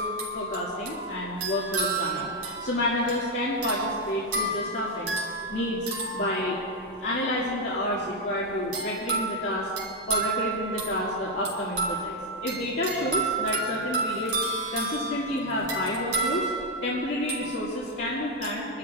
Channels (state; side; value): normal; both; correlation 0.04